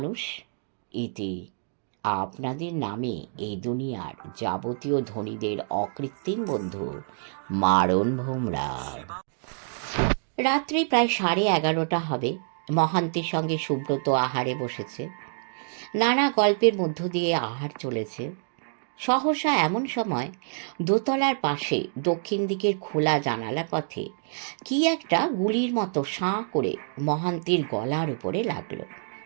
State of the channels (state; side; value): silent; left; digital silence